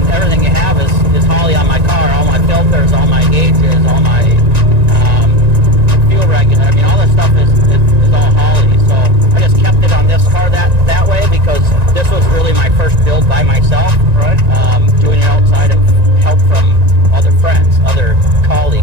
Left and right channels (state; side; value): late; left; 1.9 ms